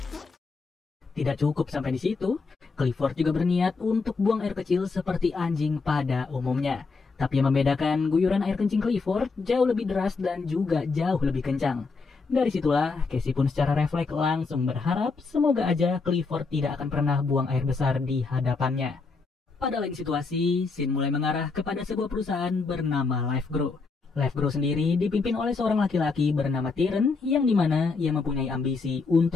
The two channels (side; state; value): right; quieter; 4.3 dB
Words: Tidak cukup sampai di situ, Clifford juga berniat untuk buang air kecil seperti anjing pada umumnya. Tapi yang membedakan, guyuran air kencing Clifford jauh lebih deras dan juga jauh lebih kencang. Dari situlah, Casey pun secara refleks langsung berharap semoga aja Clifford tidak akan pernah buang air besar di hadapannya. Pada lain situasi, scene mulai mengarah kepada sebuah perusahaan bernama LifeGrow. LifeGrow sendiri dipimpin oleh seorang laki-laki bernama Tyrion yang dimana ia mempunyai ambisi